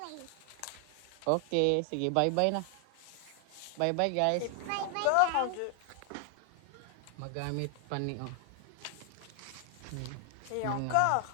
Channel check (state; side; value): different; both; correlation 0.00